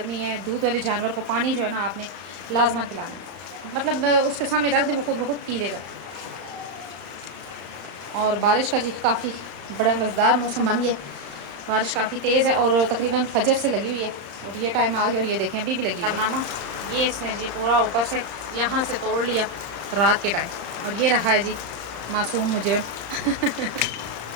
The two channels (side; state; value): left; late; 35 ms